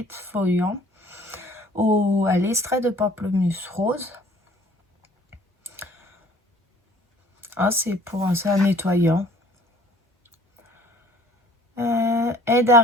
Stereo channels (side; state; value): both; normal; correlation 0.54